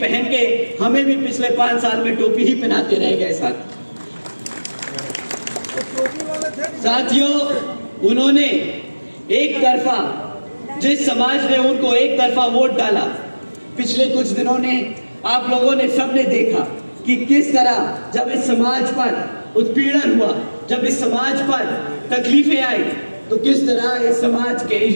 पहन के हमें भी पिछले 5 साल में टोपी ही पहनाते रह गए। साथियों, उन्होंने एक तरफा, जिस समाज ने उनको एक तरफा वोट डाला, पिछले कुछ दिनों ने आप लोगों ने सबने देखा कि किस तरह जब इस समाज पर उत्पीड़न हुआ, जब इस समाज पर तकलीफें आई, तो किस तरह इस समाज के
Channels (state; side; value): inverted; both; correlation -1.00